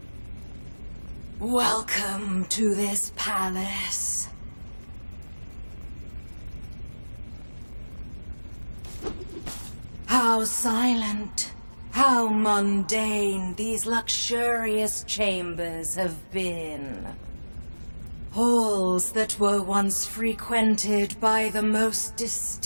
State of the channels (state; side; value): inverted; both; correlation -1.00